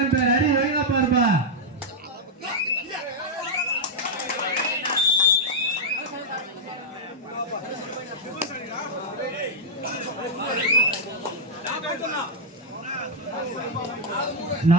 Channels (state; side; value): normal; both; correlation -0.04